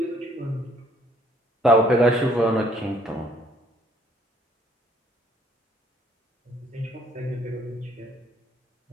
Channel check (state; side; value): normal; both; correlation 0.62